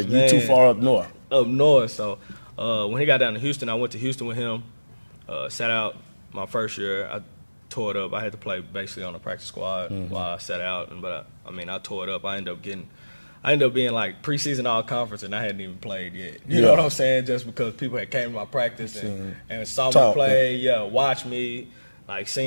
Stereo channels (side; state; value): both; inverted; correlation -1.00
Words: you too far up north. Up north. So when he got down to Houston, I went to Houston with him. Sat out my first year. I tore it up. I had to play basically on the practice squad while I sat out. But I tore it up. I ended up being like preseason all-conference, and I hadn't even played yet. You know what I'm saying? Just because people had came to my practice and saw me play, watched me, like